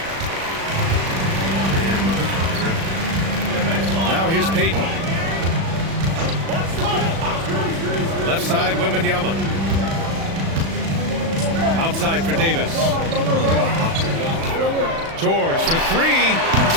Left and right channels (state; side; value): late; left; 36 ms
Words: Now here's Payton. Left side, Wembanyama. Outside for Davis. George for 3.